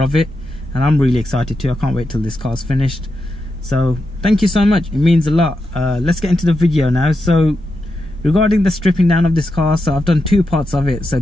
of it, and I'm really excited too. I can't wait till this car's finished. So thank you so much, it means a lot. Let's get into the video now. So regarding the stripping down of this car, so I've done two parts of it. So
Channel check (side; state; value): both; normal; correlation 0.87